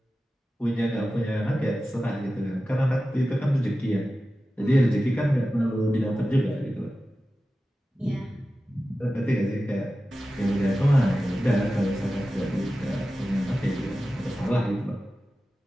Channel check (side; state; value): both; normal; correlation 0.94